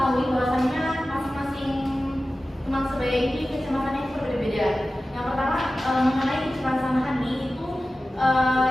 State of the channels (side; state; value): both; normal; correlation 0.95